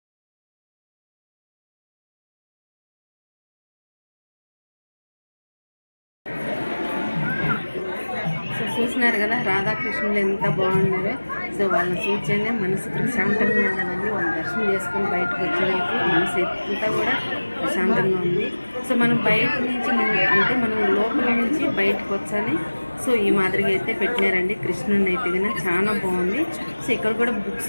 చూసినారు కదా రాధాకృష్ణులు ఎంత బాగున్నారో. సో వాళ్ళని చూస్తేనే మనసు ప్రశాంతంగా ఉండదండి. వాళ్ళ దర్శనం చేసుకొని బయటకు వచ్చేదానికి మనసు అంతా కూడా ప్రశాంతంగా ఉంది. సో మనం బయట నుంచి మనం లోపల నుంచి బయటకు వచ్చాని సో ఈ మాదిరిగా అయితే పెట్టినారండి. కృష్ణుని అయితే కన్నా చాలా బాగుంది. సో ఇక్కడ కూడా బుక్స్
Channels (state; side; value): inverted; both; correlation -1.00